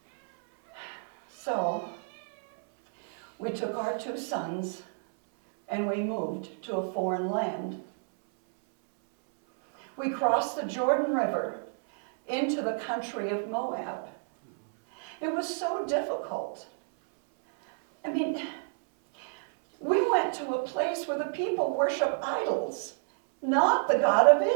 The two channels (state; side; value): silent; left; 58 dB below the other